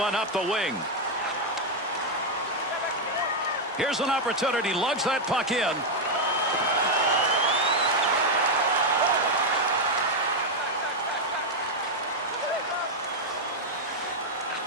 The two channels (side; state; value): both; normal; correlation 0.01